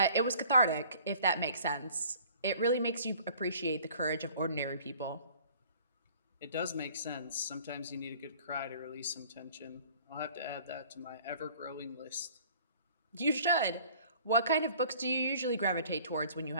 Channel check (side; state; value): both; inverted; correlation -0.52